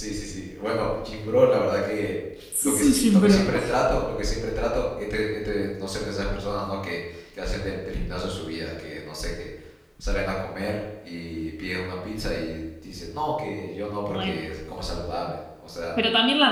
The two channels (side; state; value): both; identical; correlation 1.00